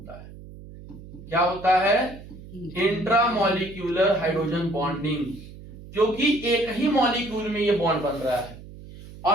है। क्या होता है? इंट्रामॉलिक्यूलर हाइड्रोजन बॉन्डिंग, क्योंकि एक ही मॉलिक्यूल में ये बॉन्ड बन रहा है।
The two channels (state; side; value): noise; right; hum, 16 dB below the sound